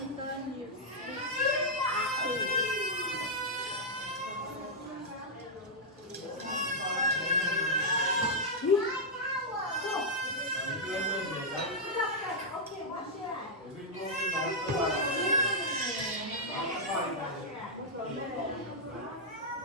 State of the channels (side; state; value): both; normal; correlation -0.06